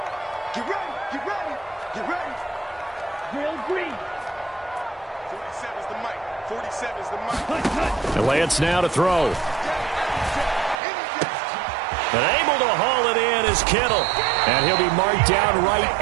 Get ready, get ready, get ready. The Lance now to throw. But able to haul it in is Kittle. And he'll be marked down right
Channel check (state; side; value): drops out; left; at 10.8 s